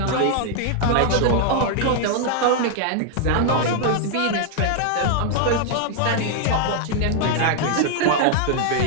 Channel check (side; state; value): both; different; correlation 0.00